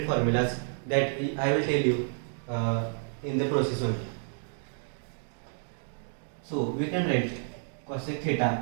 formulas that I will tell you in the process only. So we can write cosec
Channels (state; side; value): silent; left; digital silence